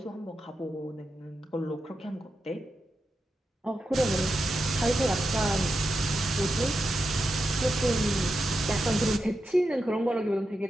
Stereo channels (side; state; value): both; normal; correlation 0.88